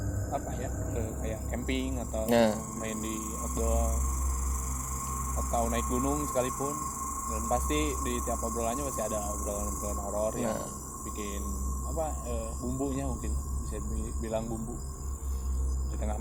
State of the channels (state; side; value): identical; both; correlation 1.00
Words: kayak camping atau main di outdoor atau naik gunung sekalipun, dan pasti di tiap obrolannya pasti ada obrolan horor yang bikin bumbunya, mungkin bisa bilang bumbu di tengah